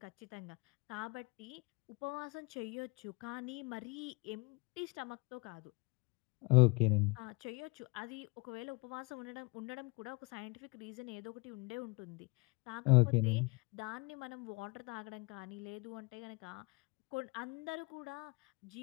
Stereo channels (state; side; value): quieter; right; 28.3 dB